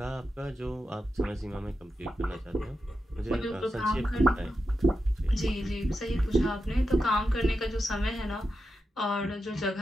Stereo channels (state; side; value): normal; both; correlation 0.88